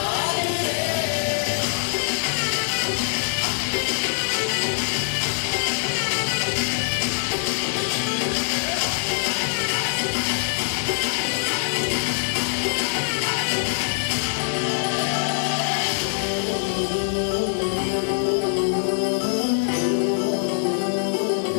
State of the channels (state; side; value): silent; right; 57 dB below the other